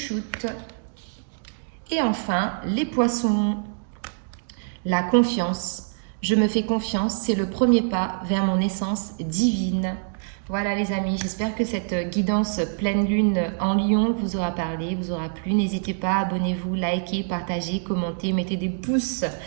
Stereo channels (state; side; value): silent; left; digital silence